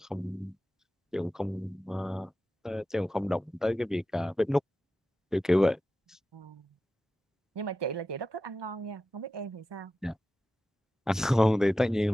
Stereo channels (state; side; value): normal; both; correlation 0.93